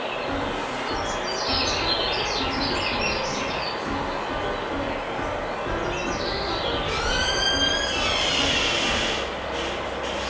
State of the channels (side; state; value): both; identical; correlation 1.00